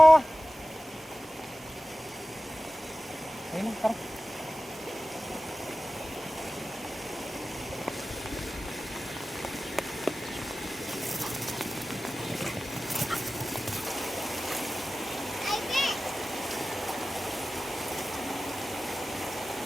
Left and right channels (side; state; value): both; normal; correlation 0.95